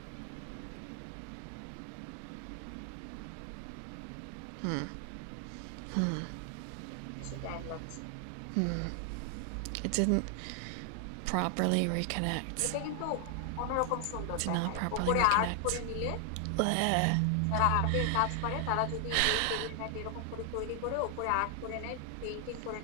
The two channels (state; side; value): different; both; correlation 0.00